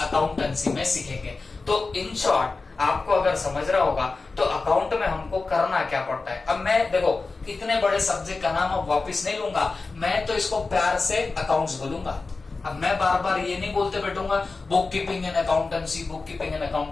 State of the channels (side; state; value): right; quieter; 3.9 dB